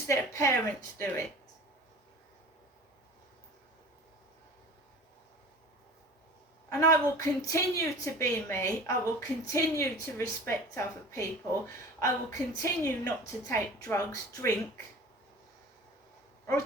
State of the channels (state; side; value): normal; both; correlation 0.40